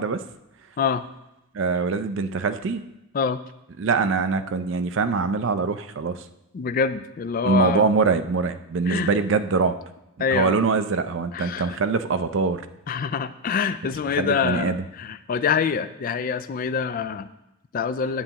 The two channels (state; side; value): normal; both; correlation 0.04